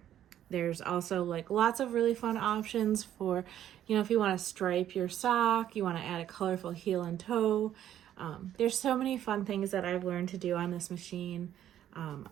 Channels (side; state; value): left; quieter; 11.2 dB